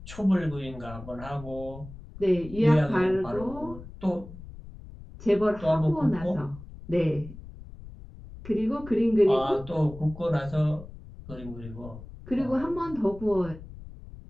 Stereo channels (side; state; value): left; noise; rumble, 15 dB below the sound